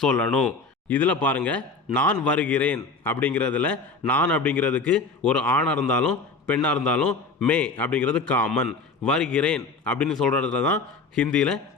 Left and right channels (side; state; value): right; quieter; 4.0 dB